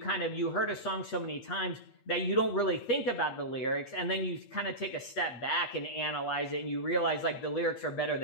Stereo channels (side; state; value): right; late; 8.4 ms